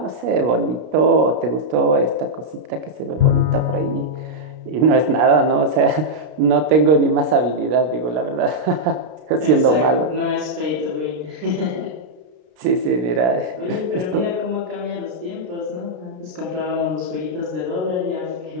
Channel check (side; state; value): left; late; 33 ms